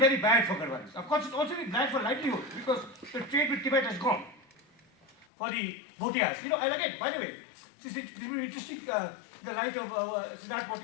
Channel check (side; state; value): right; drops out; at 5.2 s